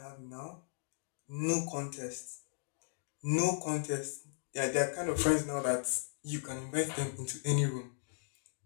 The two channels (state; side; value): silent; right; digital silence